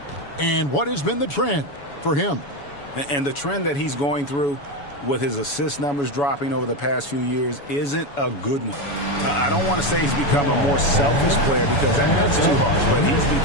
and what has been the trend for him. And the trend that he's going through with his assist numbers dropping over the past few years isn't a good one. I don't want to say he's become a more selfish player because that's too harsh, but he's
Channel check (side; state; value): right; late; 7.1 ms